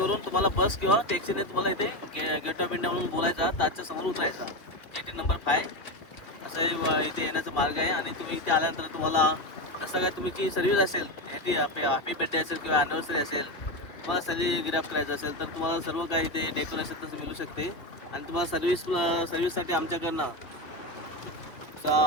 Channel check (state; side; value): late; right; 2.6 ms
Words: तुम्हाला बस किंवा टॅक्सीने तुम्हाला इथे गेट ऑफ इंडिया म्हणून बोलायचा ताजच्या समोर उतरायचा 18 नंबर 5 असं इथे येण्याचा मार्ग आहे आणि तुम्ही इथे आल्यानंतर तुम्हाला जसं काय तुमची सर्व्हिस असेल हॅपी बर्थडे असेल किंवा ॲनिव्हर्सरी असेल तुम्हाला सेलिब्रेट करायचं असेल तर तुम्हाला सर्व काही इथे डेकोरेशन तसं मिळू शकते आणि तुम्हाला सर्व्हिससाठी आमच्याकडनं